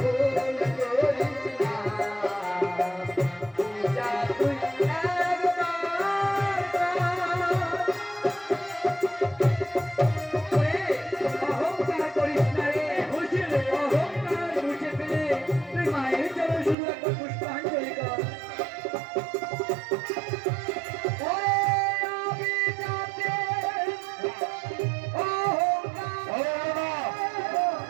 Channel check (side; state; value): left; drops out; at 16.8 s